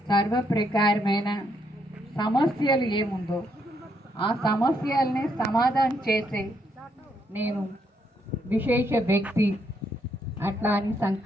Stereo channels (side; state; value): both; normal; correlation 0.75